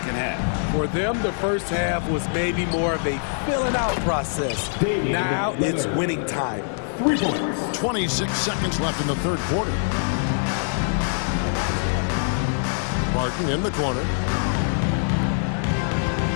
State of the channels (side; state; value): right; silent; 63 dB below the other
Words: half. For them, the first half was maybe more of a filling out process. Now it's winning time. 3 points. 26 seconds left in the third quarter. Barton in the corner.